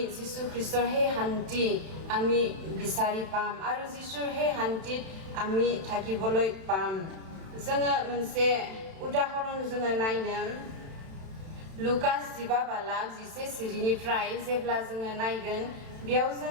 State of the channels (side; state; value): left; late; 31 ms